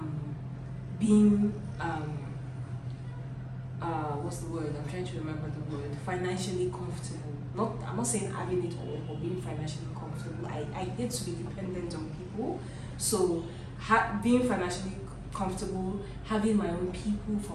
being, what's the word? I'm trying to remember the word. Financially comfortable. I'm not saying having it all, but being financially comfortable. I hate to be dependent on people. So, being financially comfortable, having my own people,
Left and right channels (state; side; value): identical; both; correlation 1.00